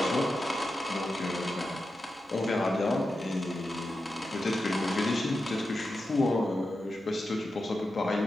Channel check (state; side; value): normal; both; correlation 0.90